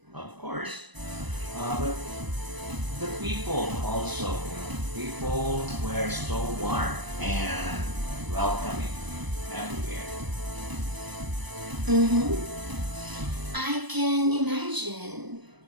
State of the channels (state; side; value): late; left; 1.0 ms